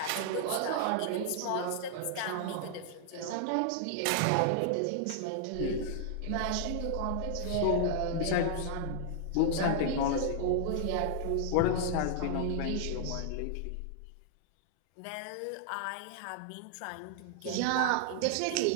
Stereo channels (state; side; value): different; both; correlation -0.01